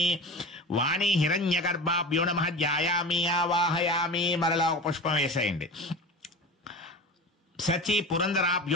వాణి హిరణ్యగర్భాభ్యో నమః. ధ్యాయామి ఆవాహయామి. మరలా ఒక పుష్పం వేసేయండి. సచి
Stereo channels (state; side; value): normal; both; correlation 0.32